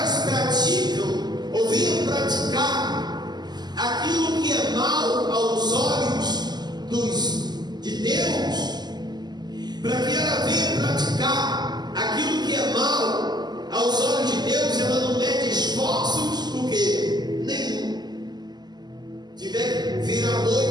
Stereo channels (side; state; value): left; late; 0.20 ms